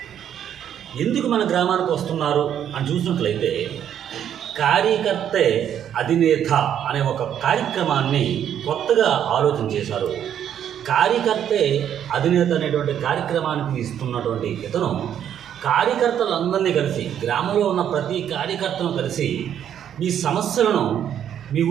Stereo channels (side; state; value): left; quieter; 9.6 dB